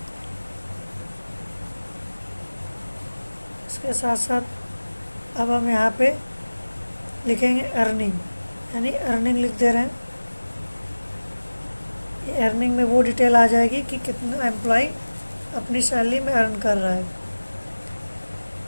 इसके साथ साथ अब हम यहाँ पे लिखेंगे अर्निंग, यानी अर्निंग लिख दे रहे हैं। ये अर्निंग में वो डिटेल आ जाएगी कि कितना एम्प्लॉय अपनी सैलरी में अर्न कर रहा है।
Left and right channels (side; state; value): both; inverted; correlation -1.00